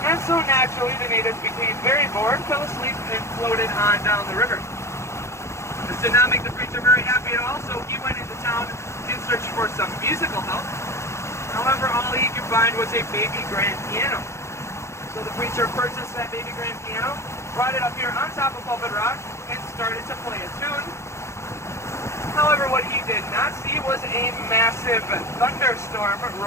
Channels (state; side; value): late; right; 0.13 ms